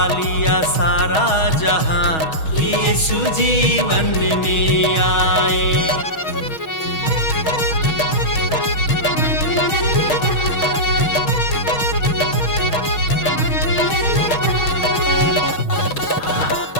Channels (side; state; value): right; late; 6.3 ms